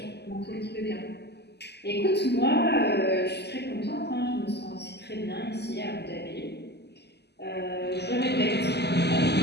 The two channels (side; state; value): right; late; 0.49 ms